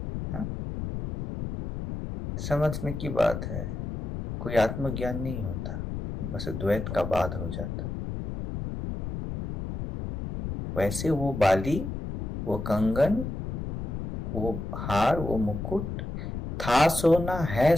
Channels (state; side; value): noise; left; rumble, 5 dB below the sound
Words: समझने की बात है, कोई आत्मज्ञान नहीं होता, बस द्वैत का बाध हो जाता है। वैसे वो बाली, वो कंगन, वो हार, वो मुकुट था सोना, है